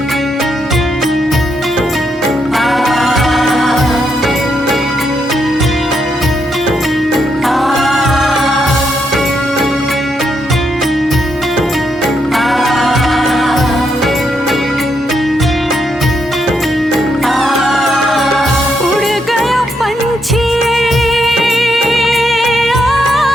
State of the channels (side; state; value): both; normal; correlation 0.79